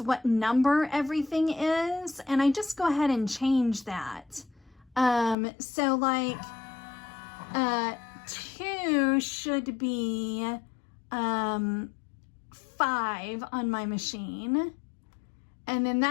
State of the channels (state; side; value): drops out; right; at 5.4 s